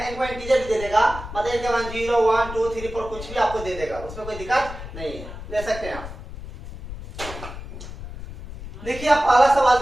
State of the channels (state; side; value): noise; left; rumble, 11 dB below the sound